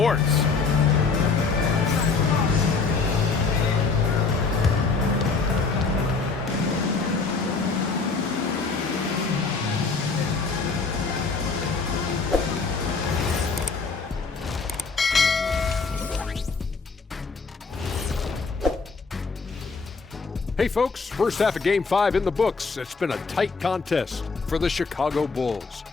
Hey folks, first half of Game 5 in the books. It's been a tight contest for the Chicago Bulls.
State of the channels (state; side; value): quieter; right; 4.5 dB